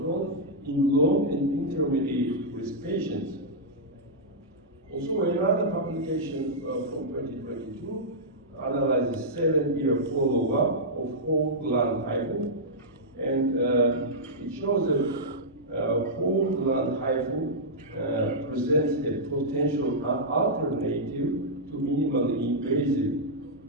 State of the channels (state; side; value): normal; both; correlation -0.10